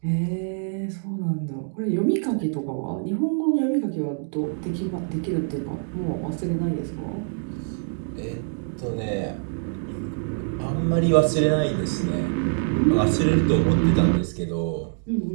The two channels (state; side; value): silent; left; digital silence